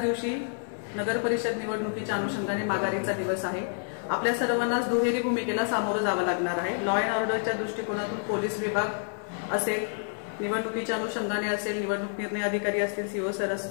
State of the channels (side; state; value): right; silent; digital silence